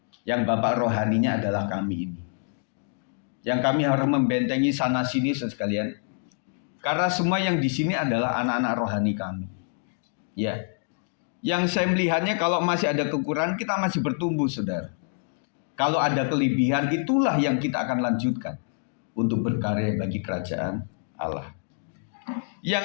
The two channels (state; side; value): silent; right; digital silence